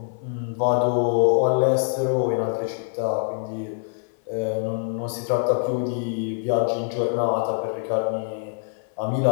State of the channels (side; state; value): right; silent; 56 dB below the other